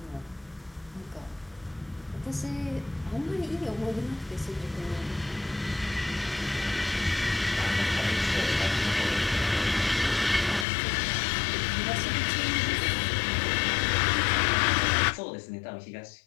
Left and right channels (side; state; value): right; drops out; at 10.7 s